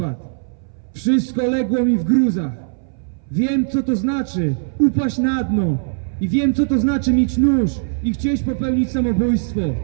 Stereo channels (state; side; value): silent; left; 61 dB below the other